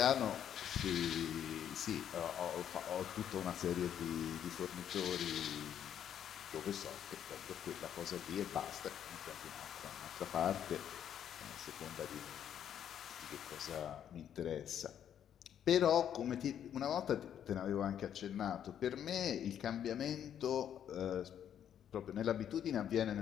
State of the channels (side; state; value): right; quieter; 9.6 dB